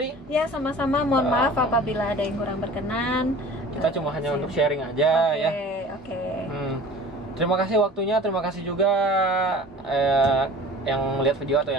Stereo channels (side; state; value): both; normal; correlation 0.43